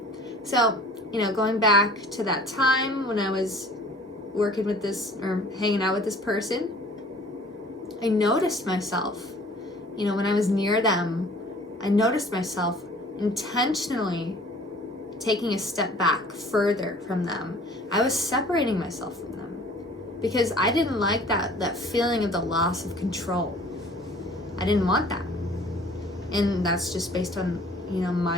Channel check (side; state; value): both; normal; correlation 0.51